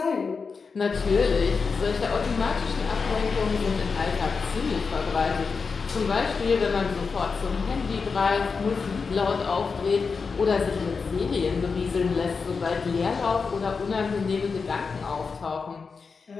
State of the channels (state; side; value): quieter; right; 5.0 dB